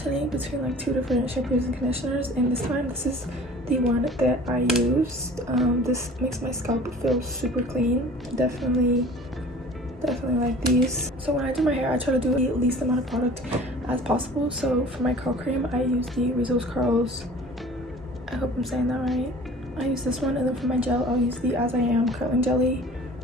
between like 2 different shampoos and conditioners, and this time this is the one that I used. This makes my scalp feel super clean. Definitely like these. So when I do my hair, I try to do the least amount of product as possible. So for my curl cream, I use the Rizzo's Curls, I hope I'm saying that right. I use this one, and then for my gel, I'll use the As I Am curling jelly.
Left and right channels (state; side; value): normal; both; correlation 0.45